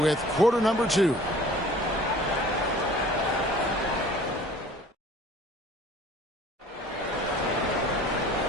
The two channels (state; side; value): normal; both; correlation 0.49